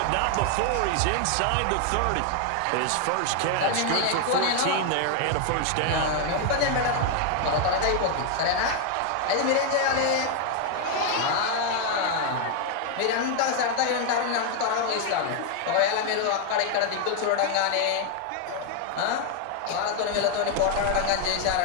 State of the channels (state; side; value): different; both; correlation 0.00